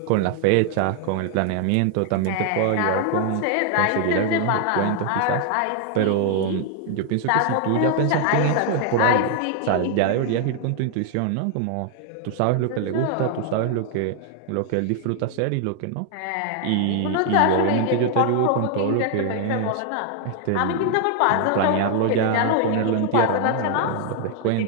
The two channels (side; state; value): both; different; correlation 0.00